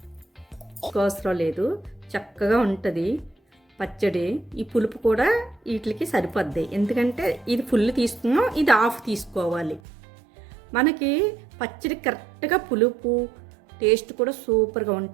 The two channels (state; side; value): drops out; left; at 9.8 s